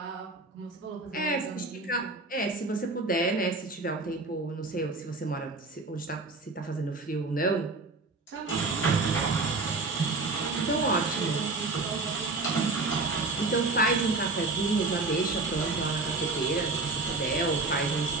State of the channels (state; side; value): quieter; left; 3.4 dB